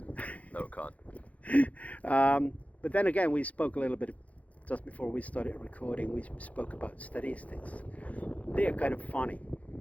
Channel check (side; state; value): right; late; 0.068 ms